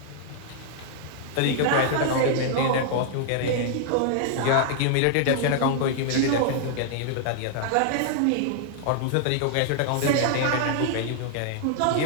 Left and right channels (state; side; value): different; both; correlation -0.01